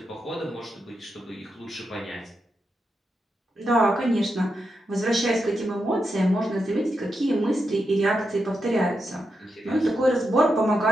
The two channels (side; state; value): both; normal; correlation 0.86